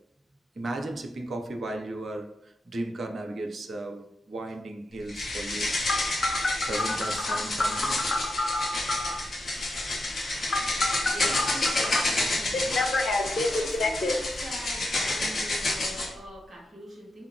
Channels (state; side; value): normal; both; correlation 0.86